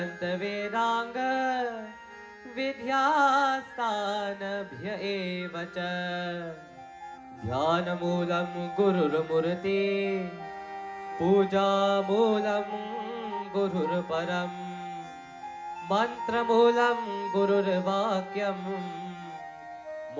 Vedanga Vidhyastanabhya evacha Dhyanamoolam Gururmurti Pujamoolam Gururparam Mantramoolam Gururvakyam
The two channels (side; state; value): both; identical; correlation 1.00